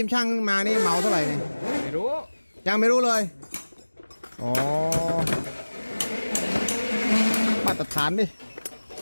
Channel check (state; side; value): inverted; both; correlation -1.00